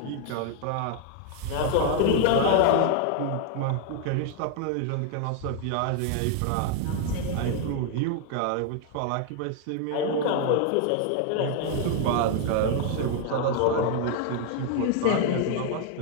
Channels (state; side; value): different; both; correlation 0.00